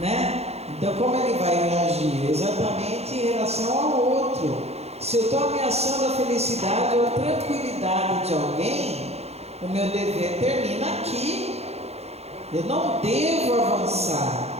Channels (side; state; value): left; late; 0.30 ms